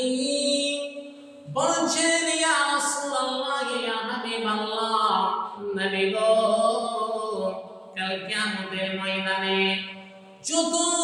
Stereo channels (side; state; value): both; identical; correlation 1.00